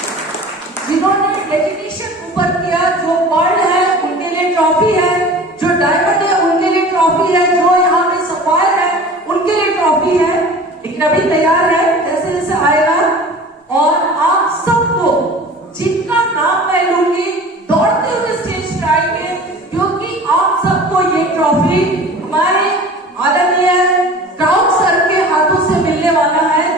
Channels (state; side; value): normal; both; correlation 0.40